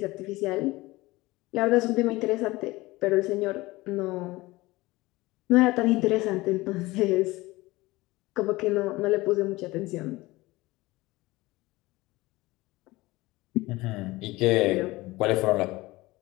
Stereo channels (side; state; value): right; quieter; 20.3 dB